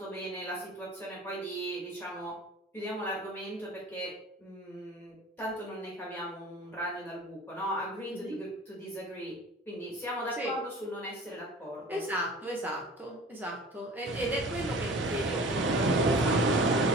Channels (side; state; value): both; normal; correlation 0.42